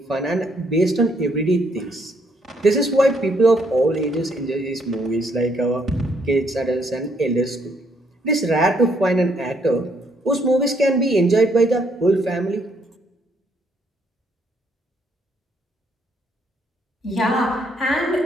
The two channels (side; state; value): both; normal; correlation 0.70